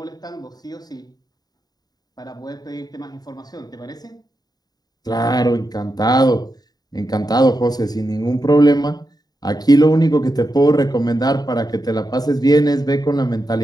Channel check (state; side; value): late; right; 0.19 ms